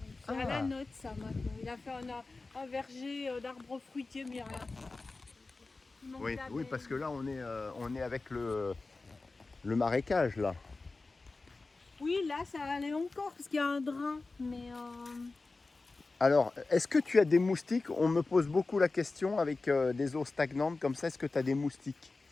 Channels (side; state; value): right; quieter; 3.6 dB